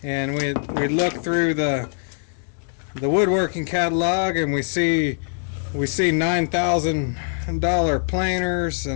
And we look through the woodworking catalog and we see $9,000 planers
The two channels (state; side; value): silent; right; digital silence